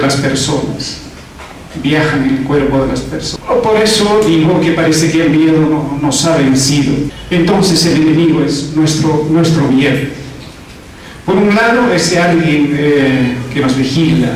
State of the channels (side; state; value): both; identical; correlation 1.00